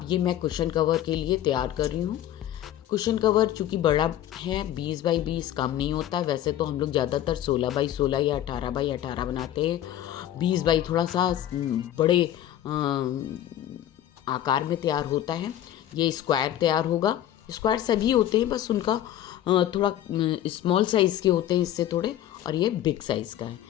ये मैं कुशन कवर के लिए तैयार कर रही हूँ। कुशन कवर चूँकि बड़ा है, 20 बाई 20 कम नहीं होता। वैसे तो हम लोग ज़्यादातर 16 बाई 16 या 18 बाई 18 बनाते हैं। 20 बाई थोड़ा सा बड़े आकार में तैयार होता है। ये स्क्वायर तैयार होगा। स्क्वायर सभी होते हैं, बस उनका थोड़ा स्मॉल साइज़ के होते हैं इससे थोड़े, और ये बिग साइज़ का है।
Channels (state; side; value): quieter; right; 12.1 dB